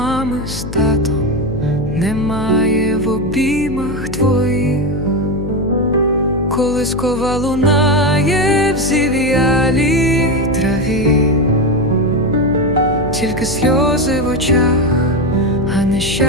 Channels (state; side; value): noise; left; hum, 8 dB below the sound